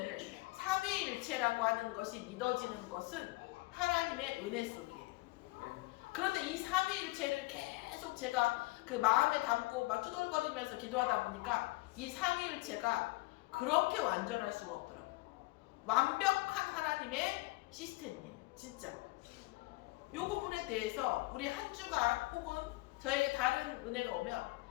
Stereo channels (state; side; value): quieter; right; 22.4 dB